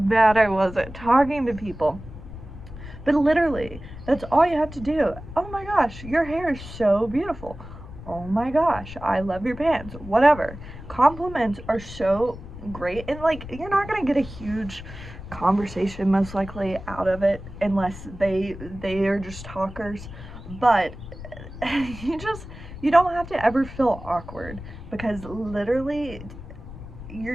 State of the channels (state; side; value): noise; left; rumble, 13 dB below the sound